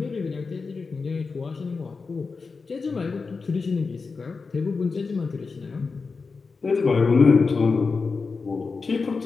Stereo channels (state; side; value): quieter; right; 4.5 dB